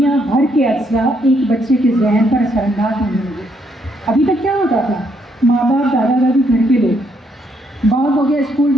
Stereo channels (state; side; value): normal; both; correlation 0.73